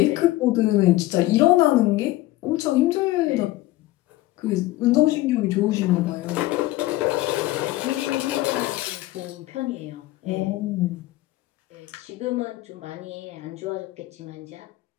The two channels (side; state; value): right; quieter; 17.3 dB